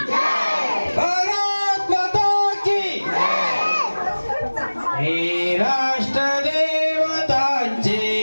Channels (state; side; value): inverted; both; correlation -1.00